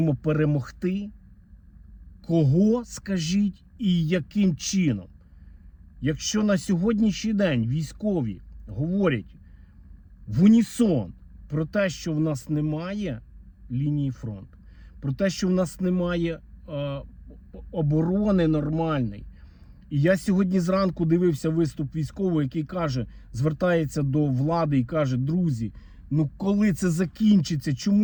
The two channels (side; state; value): both; identical; correlation 1.00